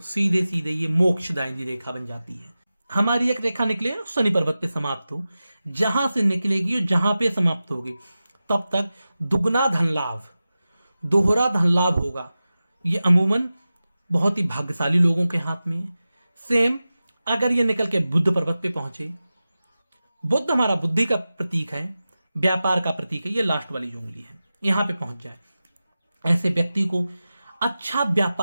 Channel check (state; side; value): inverted; both; correlation -0.94